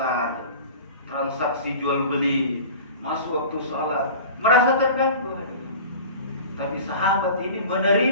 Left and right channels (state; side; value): inverted; both; correlation -0.39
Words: transaksi jual beli, masuk waktu sholat, merasa terganggu. Tapi sahabat ini